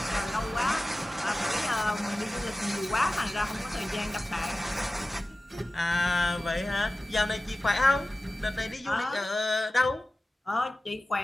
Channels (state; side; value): normal; both; correlation 0.96